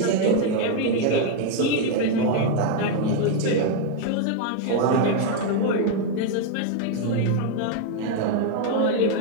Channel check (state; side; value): different; both; correlation 0.01